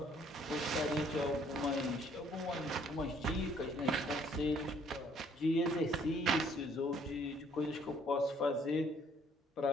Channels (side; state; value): both; normal; correlation 0.62